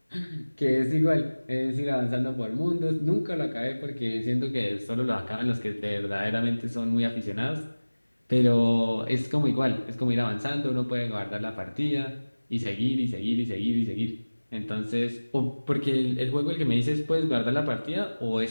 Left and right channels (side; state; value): both; inverted; correlation -1.00